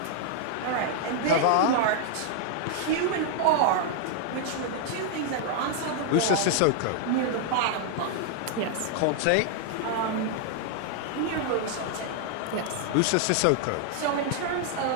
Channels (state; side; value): different; both; correlation 0.00